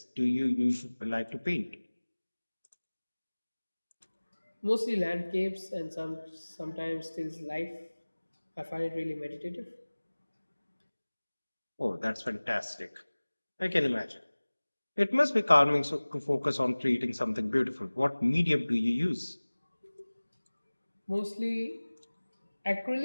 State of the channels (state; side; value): inverted; both; correlation -1.00